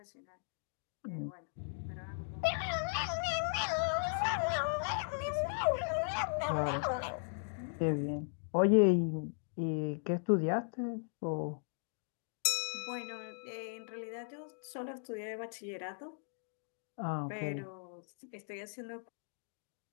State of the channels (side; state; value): right; silent; digital silence